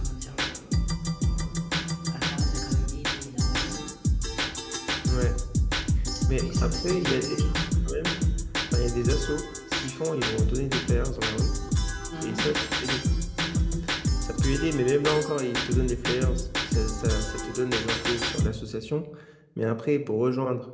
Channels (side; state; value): both; identical; correlation 1.00